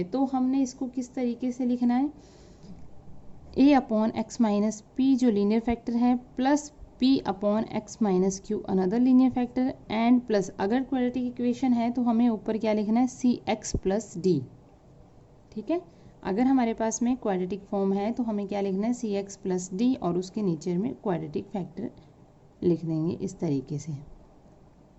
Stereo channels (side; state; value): both; identical; correlation 1.00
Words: तो हमने इसको किस तरीके से लिखना है, a upon x minus P जो लीनियर फैक्टर है plus p upon x minus Q another linear factor and plus, अगर क्वाड्रेटिक इक्वेशन है तो हमें ऊपर क्या लिखना है, cx प्लस d। ठीक है, अगर हमारे पास में क्वाड्रेटिक फॉर्म है तो हमें क्या लिखना है, सी एक्स प्लस डी, और उसके नीचे में क्वाड्रेटिक फैक्टर लिख देंगे इस तरीके से।